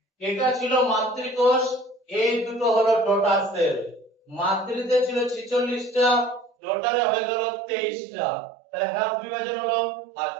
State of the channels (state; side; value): drops out; left; at 6.5 s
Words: এটা ছিল মাতৃকোষ, এই দুটো হলো ডটার সেল। মাতৃতে ছিল 46টা, ডটারে হয়ে গেল 23টা, তাহলে হাফ বিভাজন হলো।